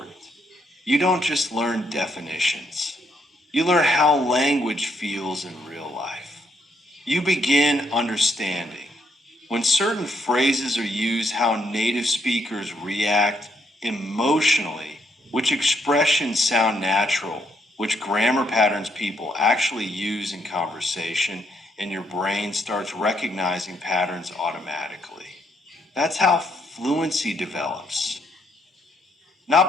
You don't just learn definitions. You learn how language feels in real life. You begin understanding. When certain phrases are used, how native speakers react emotionally, which expressions sound natural, which grammar patterns people actually use in conversation, and your brain starts recognizing patterns automatically. That's how fluency develops.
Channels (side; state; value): both; normal; correlation 0.73